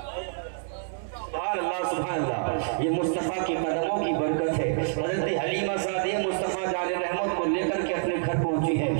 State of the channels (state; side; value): silent; left; 60 dB below the other